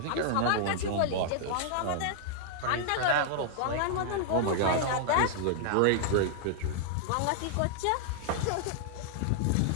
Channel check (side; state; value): both; different; correlation -0.01